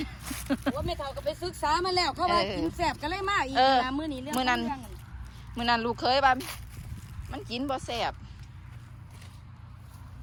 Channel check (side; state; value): both; identical; correlation 1.00